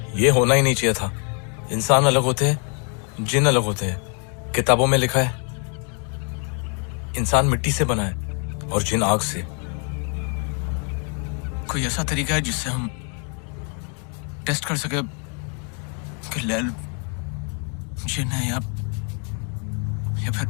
ये होना ही नहीं चाहिए था। इंसान अलग होते हैं, जिन अलग होते हैं। किताबों में लिखा है इंसान मिट्टी से बना है और जिन आग से। कोई ऐसा तरीका है जिससे हम टेस्ट कर सके कि लैल जिन है या फिर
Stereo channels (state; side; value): quieter; right; 39.5 dB